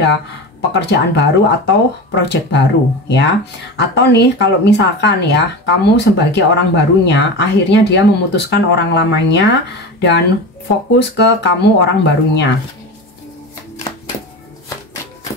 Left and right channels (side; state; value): both; normal; correlation 0.27